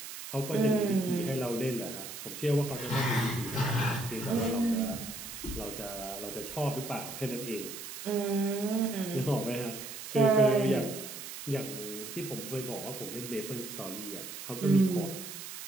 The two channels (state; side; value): noise; right; hiss, 10 dB below the sound